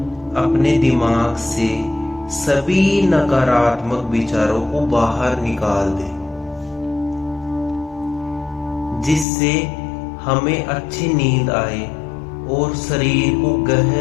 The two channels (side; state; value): right; drops out; at 9.2 s